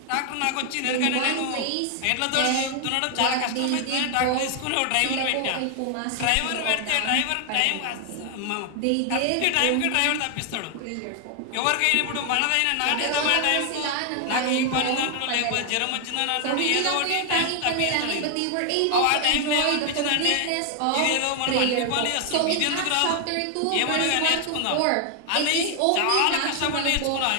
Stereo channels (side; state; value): both; different; correlation 0.00